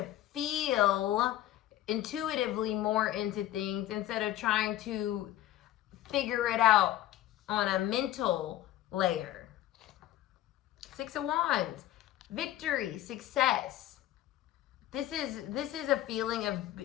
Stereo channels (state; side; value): quieter; right; 13.9 dB